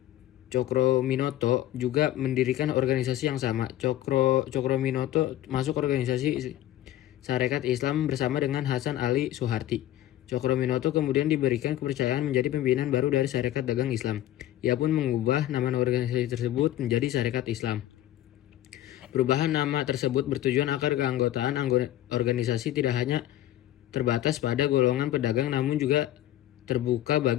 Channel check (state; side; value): quieter; right; 13.5 dB